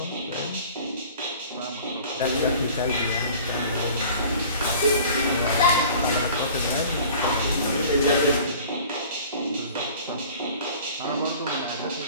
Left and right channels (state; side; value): inverted; both; correlation -0.46